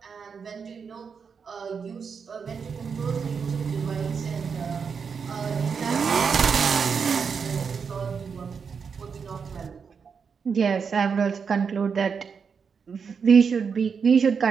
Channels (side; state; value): left; quieter; 6.0 dB